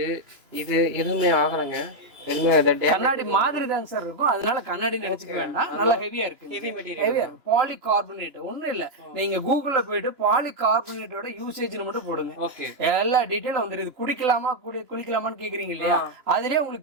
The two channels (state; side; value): late; left; 2.9 ms